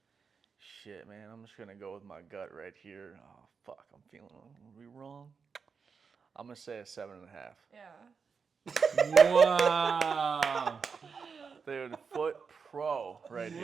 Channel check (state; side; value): quieter; left; 5.6 dB